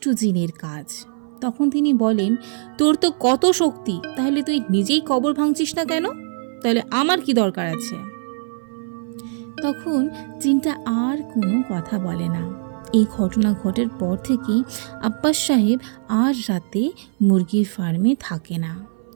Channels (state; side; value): silent; left; 57 dB below the other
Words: জিনের কাজ। তখন তিনি বলেন, তোর তো কত শক্তি, তাহলে তুই নিজেই কবর ভাঙছিস না কেন? তাহলে আমার কি দরকার আছে? তখন জিনটা আর কোনো কথা বলে না। এই ঘটনা ঘটার পর থেকেই আব্বাস সাহেব আর রাতে মুরগির ফার্মে থাকে না।